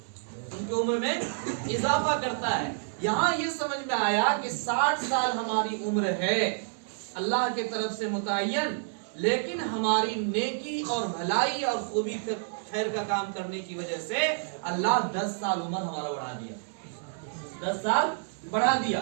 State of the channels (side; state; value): left; silent; digital silence